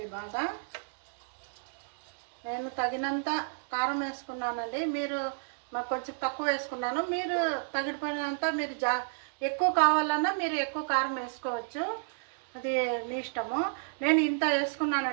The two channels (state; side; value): silent; left; digital silence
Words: బాగా. నేను తగినంత కారం వేసుకున్నానండి. మీరు నాకు కొంచెం తక్కువ వేసుకున్నాను. మీరు తగిననంత మీరు ఎక్కువ కావాలన్నా మీరు ఎక్కువ కారం వేసుకోవచ్చు, అది మీ ఇష్టము. నేను ఇంత